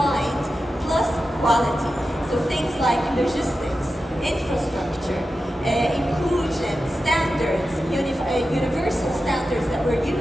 plus quality. So things like logistics, infrastructure, inclusion, standards, universal standards that we're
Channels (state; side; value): normal; both; correlation 0.92